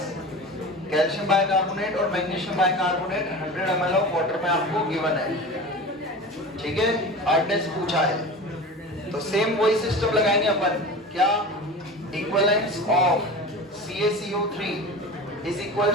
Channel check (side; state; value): both; normal; correlation 0.33